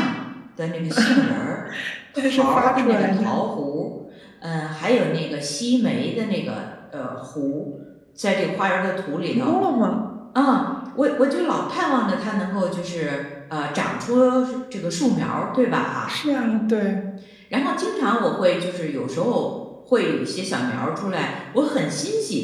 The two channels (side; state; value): both; identical; correlation 1.00